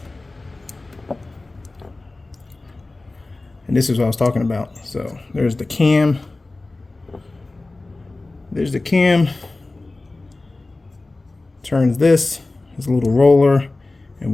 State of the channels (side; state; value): right; quieter; 3.2 dB